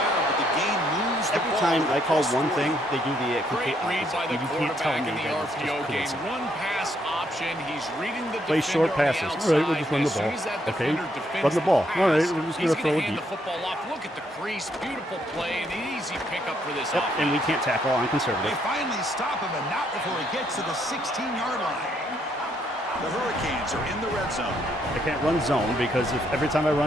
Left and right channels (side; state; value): both; normal; correlation 0.72